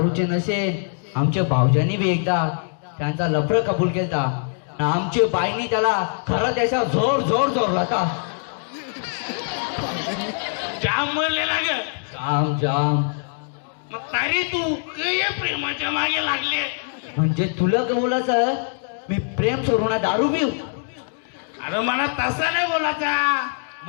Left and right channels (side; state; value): right; silent; digital silence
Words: नशे आमच्या भाऊजांनी बी एकदा त्यांचा लफडं कबूल केलता. आमच्या बाईनी त्याला खरं त्याच्या जोर होता. जाम म्हणलेला ग. जाम मग तरी तू या प्रेमाच्या मागे लागले. म्हणजे तुला बोलायचं मी प्रेम सोडू ना दारू पिऊ? अरे मला तसा नाही बोलायचा.